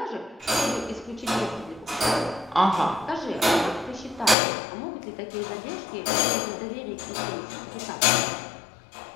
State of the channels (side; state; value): right; drops out; at 4.4 s